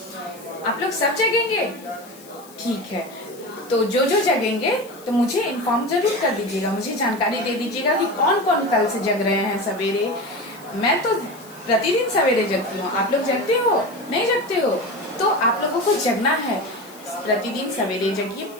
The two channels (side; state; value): left; noise; hiss, 22 dB below the sound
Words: आप लोग सब जगेंगे? ठीक है। तो जो जगेंगे तो मुझे इन्फॉर्म जरूर कर दीजिएगा, मुझे जानकारी दे दीजिएगा कि कौन कौन कल से जग रहे हैं सवेरे। मैं तो प्रतिदिन सवेरे जगती हूँ। आप लोग जगते हो? नहीं जगते हो? तो आप लोगों को जगना है, प्रतिदिन सवेरे जगिए।